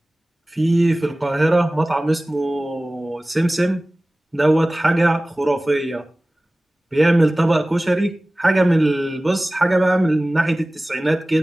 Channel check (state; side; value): normal; both; correlation 0.98